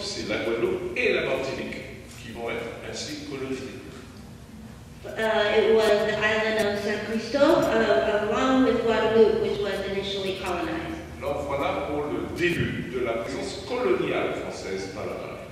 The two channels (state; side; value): identical; both; correlation 1.00